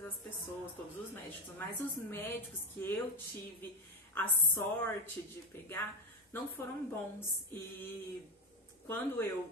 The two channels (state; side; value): normal; both; correlation 0.16